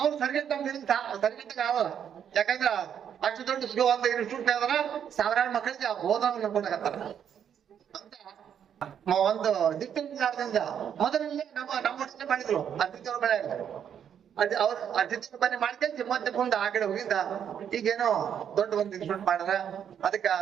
ಸರಿಗಟ್ಟ ಸರಿಗಟ್ಟಿಗೆ ಆಗಲ್ಲ. ಯಾಕಂದ್ರ ಅಷ್ಟು ದೊಡ್ಡ ಒಂದು ಇನ್ಸ್ಟಿಟ್ಯೂಟ್ ಅದರ ಸಾವಿರಾರು ಮಕ್ಕಳಿಗೆ ಬೋಧನ ನಂಬ್ಕೊಂಡಾಗತ್ತಾರ ಅಂತ ಒಂದು ದಿಟ್ಟಿಂದ ಮೊದಲಲ್ಲೇ ನಮ್ಮ ಮಾಡಿದ್ರು ಅತಿಥಿಯವ್ರ ಬೆಳೆ ಅವ್ರ ಅತಿಥಿ ಮನೆ ಮಾಡ್ಕೊಂಡು ಮತ್ತೆ ಮುಂದೆ ಆ ಕಡೆ ಹೋಗಿದ್ದ ಈಗೇನೋ ದೊಡ್ಡ ಒಂದು ಇನ್ಸ್ಟಿಟ್ಯೂಟ್ ಮಾಡ್ಯಾರ. ಅದಕ್ಕ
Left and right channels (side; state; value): left; quieter; 8.7 dB